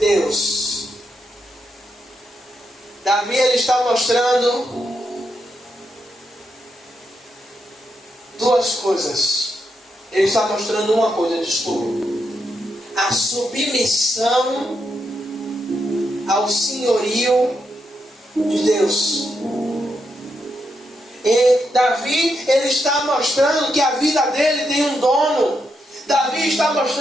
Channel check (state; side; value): normal; both; correlation 0.82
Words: Davi ele está mostrando duas coisas. Ele está mostrando uma coisa, desculpa: a submissão ao senhorio de Deus. E Davi ele está mostrando que a vida dele tem um dono. Davi está